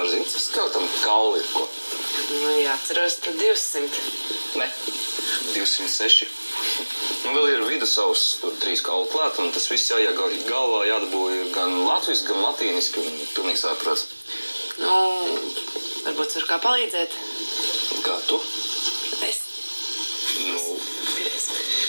zini, ka skeletam kauli ir ko? Nu, jā, ceros, tad 200. Ne, 206. Nu, vēl ir vidusavs, tur 3 kauli klāt, un tas viss jāiet galvā, jādabū ir gan latviski, gan latīniski, un pilnīgi sāprāts. Nu, varbūt var kā palīdzēt. Kā tu? Es. Nu.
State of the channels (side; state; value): both; inverted; correlation -1.00